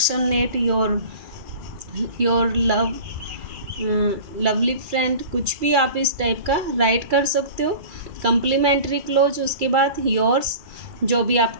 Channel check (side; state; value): left; late; 2.4 ms